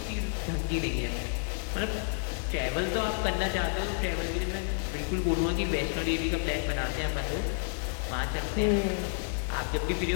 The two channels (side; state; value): right; silent; 58 dB below the other